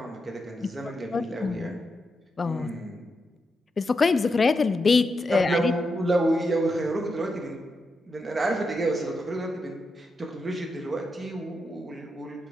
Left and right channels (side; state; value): both; normal; correlation 0.86